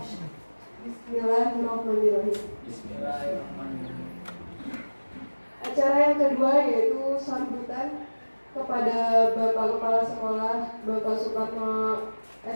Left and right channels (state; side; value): inverted; both; correlation -1.00